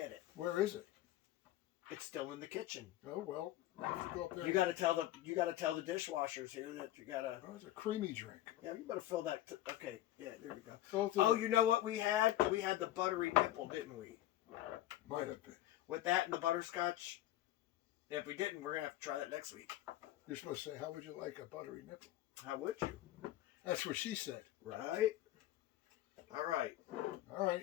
it? Where is it? It's still in the kitchen. Oh, well. Let's go up there. You gotta tell the dishwashers here that you gotta. Oh, it's a creamy drink. Yeah, you better fill that. Okay, yeah, there we go. Both Oh, you know what we had? We had the buttery nipple, didn't we? Might have been. With that and the butterscotch. If we didn't, we're gonna have to try that next week. You're supposed to say, how would you like a buttery nipple? How would you? That's what she said. Right. All right. All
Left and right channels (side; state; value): right; quieter; 14.3 dB